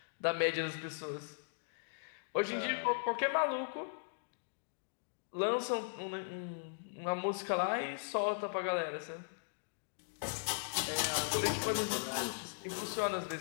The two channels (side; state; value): right; silent; digital silence